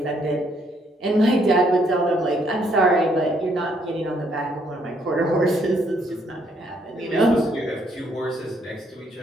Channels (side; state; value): both; normal; correlation 0.70